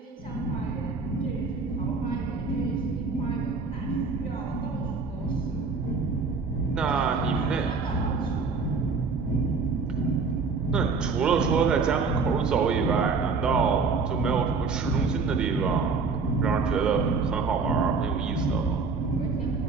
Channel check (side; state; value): left; quieter; 4.6 dB